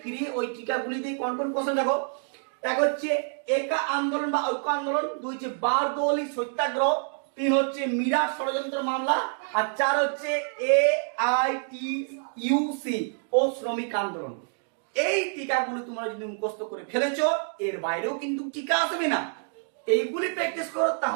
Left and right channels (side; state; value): left; silent; 60 dB below the other